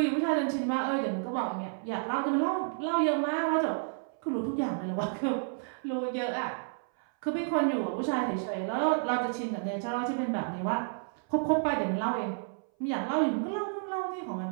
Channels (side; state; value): left; silent; 57 dB below the other